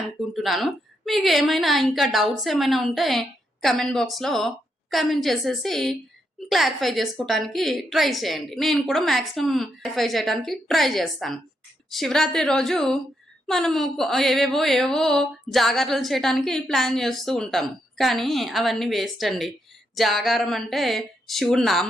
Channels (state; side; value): normal; both; correlation 0.80